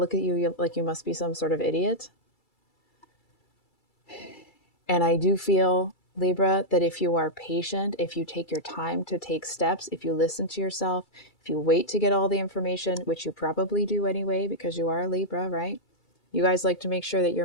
at you like you must be some sort of idiot. And I do feel, Libra, that if you are patient, if you take your time to take steps, if you listen to yourself, if you wait to get all the information, which you probably do anyway, because you are a Libra, right? You guys like to make sure that you're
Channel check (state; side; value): late; right; 2.3 ms